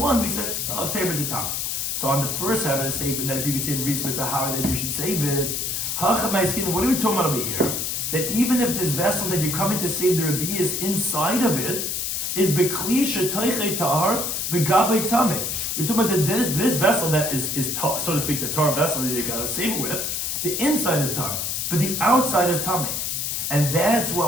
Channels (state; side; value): noise; left; hiss, 1 dB below the sound